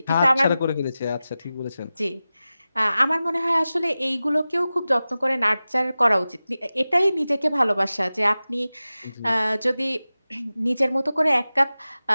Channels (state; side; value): inverted; both; correlation -0.96